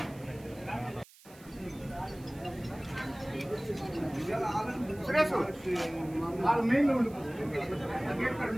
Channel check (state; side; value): noise; right; hiss, 24 dB below the sound